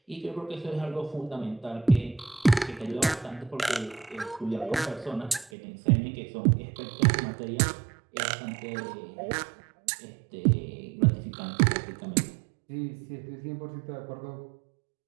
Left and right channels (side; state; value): left; drops out; at 5.5 s